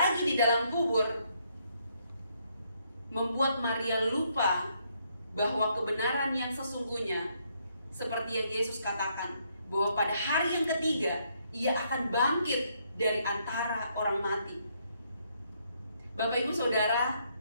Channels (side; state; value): both; inverted; correlation -0.73